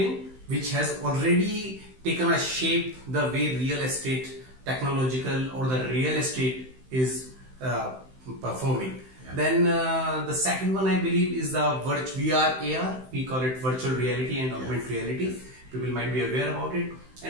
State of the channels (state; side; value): late; left; 15 ms